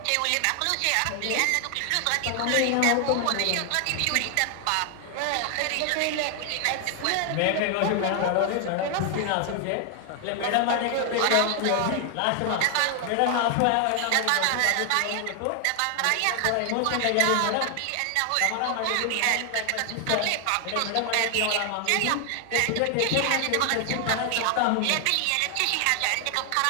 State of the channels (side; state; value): both; different; correlation 0.00